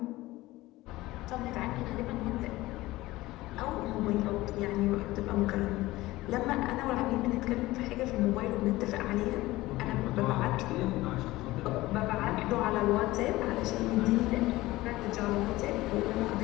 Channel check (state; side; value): quieter; right; 18.4 dB